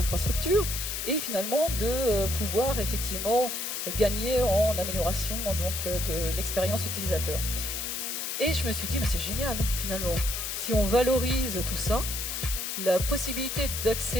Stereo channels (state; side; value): noise; left; hiss, 3 dB below the sound